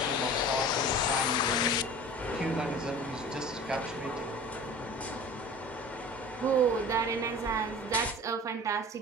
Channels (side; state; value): both; normal; correlation 0.39